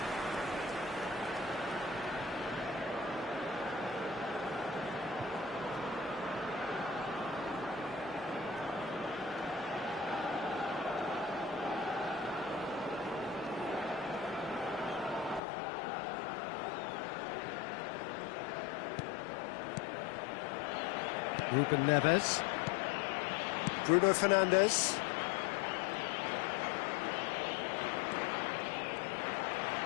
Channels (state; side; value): drops out; right; at 15.4 s